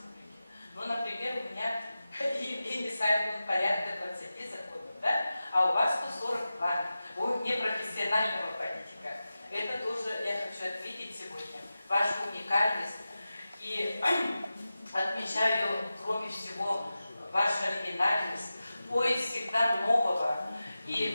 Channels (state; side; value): inverted; both; correlation -0.94